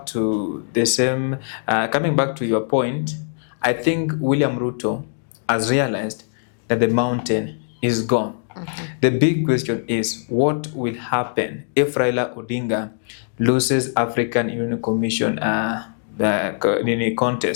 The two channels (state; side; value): silent; right; digital silence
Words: to your point, I think William Ruto has realized that the mountain is gone. The big question is, what will happen if Raila Odinga loses African Union Commission the